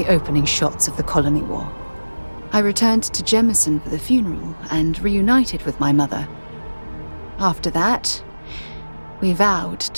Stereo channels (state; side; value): inverted; both; correlation -1.00